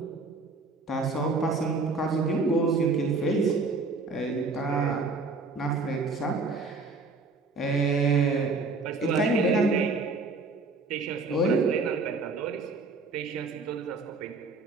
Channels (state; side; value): quieter; left; 3.8 dB